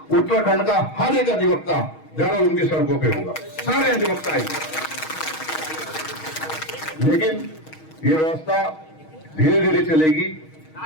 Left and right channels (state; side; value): late; right; 6.3 ms